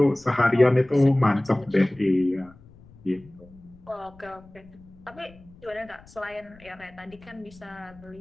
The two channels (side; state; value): left; noise; rumble, 24 dB below the sound